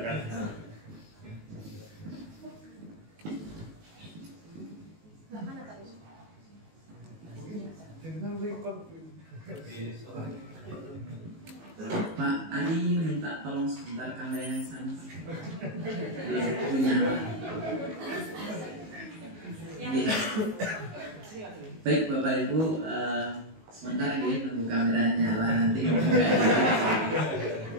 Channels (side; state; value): left; late; 19 ms